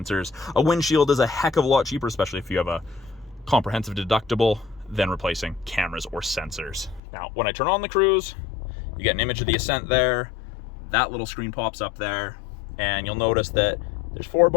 A windshield is a heck of a lot cheaper, especially if you have a comprehensive deductible, than replacing cameras or sensors. Now, when I turn on the cruise, you get an image of the Ascent there. That little screen pops up there, and you'll notice that there's 4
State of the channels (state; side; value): drops out; right; at 7.0 s